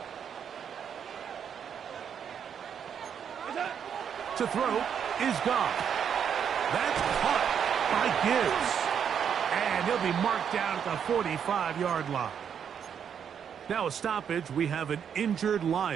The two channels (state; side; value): quieter; left; 7.9 dB